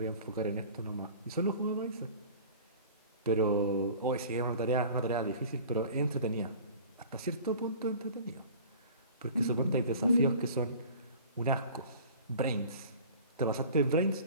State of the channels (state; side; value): inverted; both; correlation -0.44